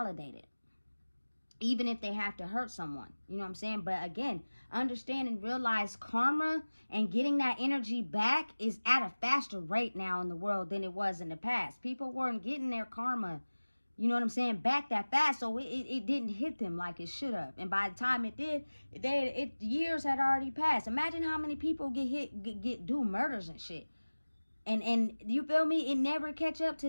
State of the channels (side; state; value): both; inverted; correlation -1.00